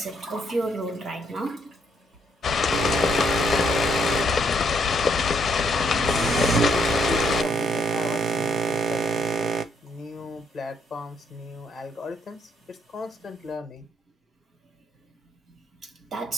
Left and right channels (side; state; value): both; normal; correlation 0.72